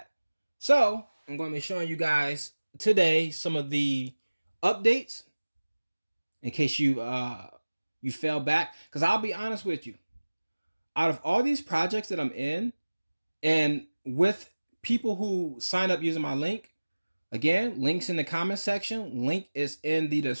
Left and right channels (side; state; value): both; inverted; correlation -1.00